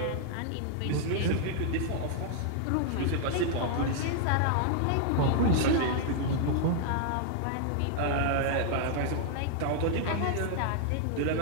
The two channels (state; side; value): different; both; correlation -0.01